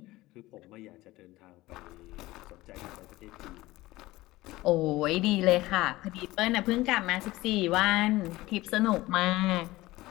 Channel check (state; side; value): quieter; right; 18.5 dB